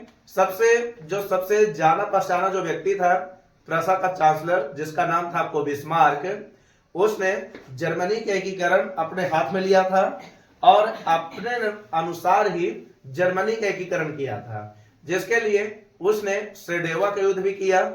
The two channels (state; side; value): identical; both; correlation 1.00